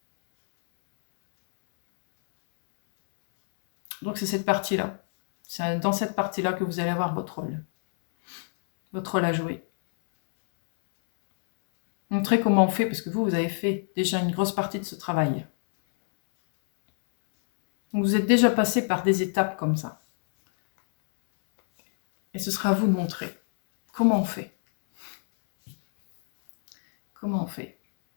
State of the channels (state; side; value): silent; right; 60 dB below the other